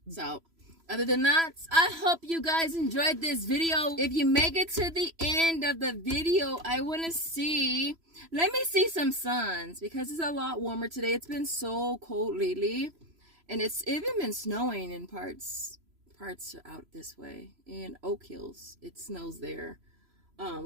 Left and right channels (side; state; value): left; late; 3.0 ms